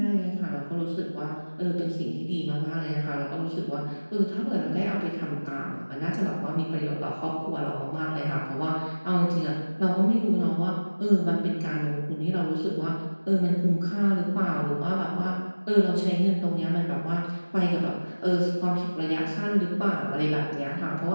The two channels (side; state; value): both; inverted; correlation -1.00